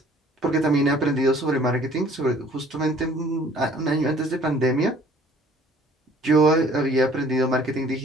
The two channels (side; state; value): both; normal; correlation 0.54